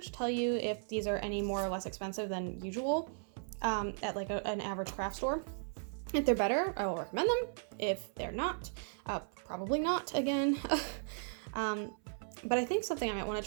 tell you if these are any more or less expensive than usual at like an average craft store. If they're better, I will recommend them. If they're not, probably not again. But I think something I might want to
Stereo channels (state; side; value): silent; left; 54 dB below the other